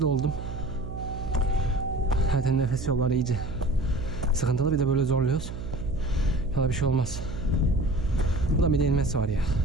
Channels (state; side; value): noise; right; hum, 8 dB below the sound